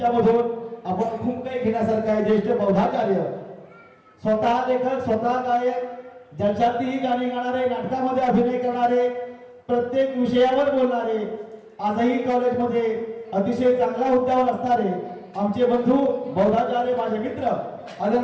आपण खूप काही घेण्यासारखं आहे, ज्येष्ठ बौद्धाचार्य, स्वतः लेखक, स्वतः गायक, जलशातीही गाणी गाणारे, नाटकामध्ये अभिनय करणारे, प्रत्येक विषयावर बोलणारे, आजही कॉलेजमध्ये अतिशय चांगल्या हुद्द्यावर असणारे आमचे बंधू बौद्धाचार्य, माझे मित्र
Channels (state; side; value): identical; both; correlation 1.00